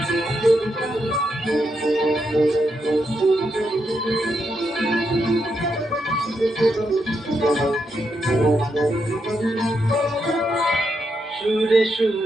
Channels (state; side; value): normal; both; correlation 0.82